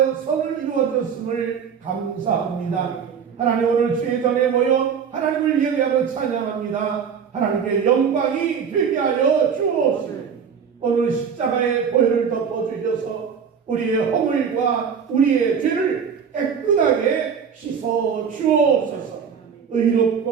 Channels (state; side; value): quieter; left; 6.9 dB